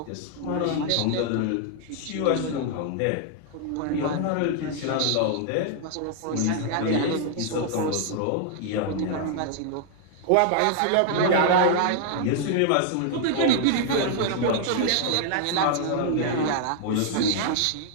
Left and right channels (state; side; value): different; both; correlation 0.00